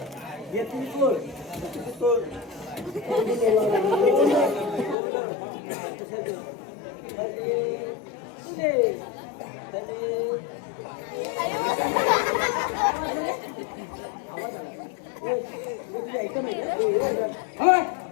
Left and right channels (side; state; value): right; drops out; at 5.0 s